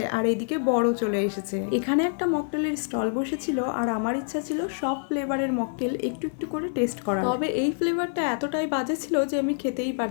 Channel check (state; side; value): silent; right; digital silence